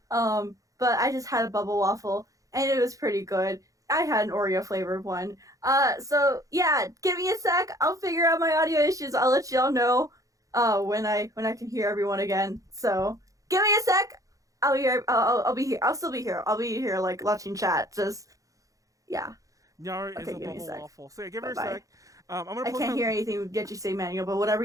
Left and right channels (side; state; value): left; late; 0.16 ms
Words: But I just had a bubble waffle, and it was pretty good. I had an Oreo flavored one. So yeah, give me a sec. I'll figure out my audio issues. I'll let y'all know when I can hear everyone again. So give me a sec. I'll be here. I'll be here. I'll still be here. I'll be here like watching chat. Just yeah. Nyaru Okay, is a give me a bubble sec. waffle. So yeah, give her a Bye-bye. sec. I'm gonna I can't hear anything that you say, Manuel. But whatever